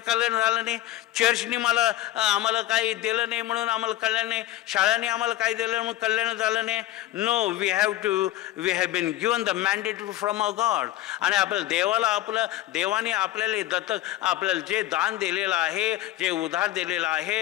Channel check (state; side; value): quieter; right; 14.8 dB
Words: कल्याण झालं नाही, चर्चने आम्हाला काही दिलं नाही म्हणून आम्हाला कल्याण नाही, शाळांनी आम्हाला काही दिलं म्हणून कल्याण झालं नाही. No, we have been given the mandate from a God. आणि आपल्या देवाने आपल्याला दत्तक आपल्याला जे दान दिलेलं आहे, जे उधार दिलेलं